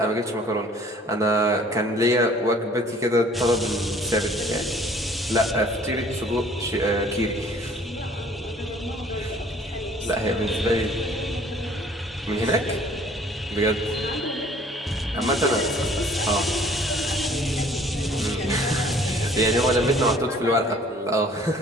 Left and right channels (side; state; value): both; normal; correlation 0.55